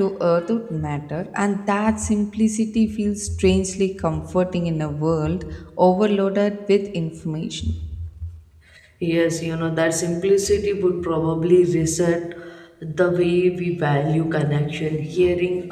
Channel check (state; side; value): identical; both; correlation 1.00